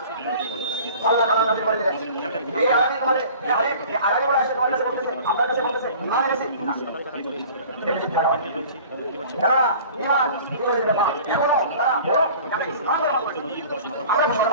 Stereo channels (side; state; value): both; inverted; correlation -0.45